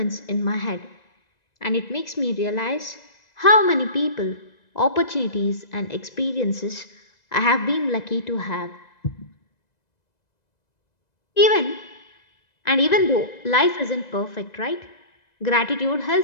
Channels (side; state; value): right; late; 2.0 ms